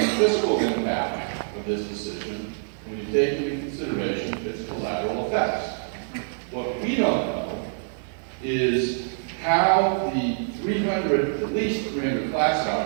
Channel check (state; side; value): silent; left; 61 dB below the other